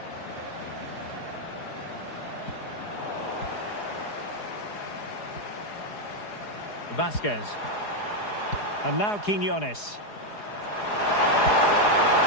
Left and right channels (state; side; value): late; right; 4.8 ms